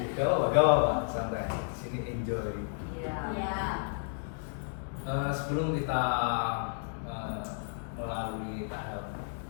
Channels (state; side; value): silent; right; digital silence